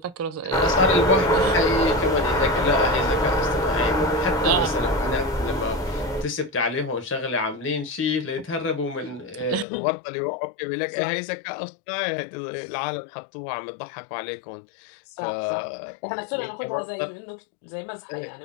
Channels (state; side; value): drops out; right; at 9.7 s